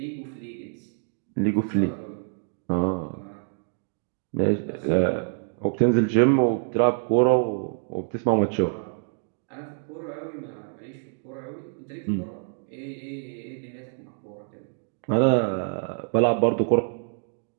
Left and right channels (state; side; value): silent; left; 61 dB below the other